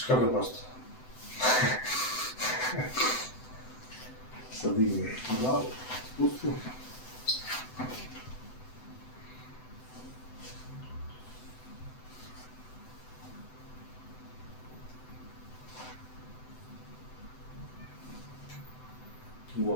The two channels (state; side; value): late; right; 7.9 ms